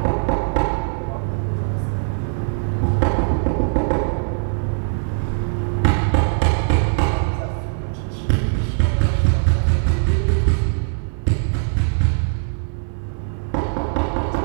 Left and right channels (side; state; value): left; silent; digital silence